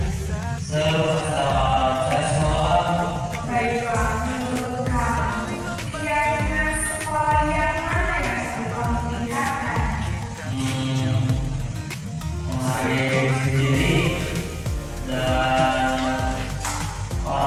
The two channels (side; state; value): both; identical; correlation 1.00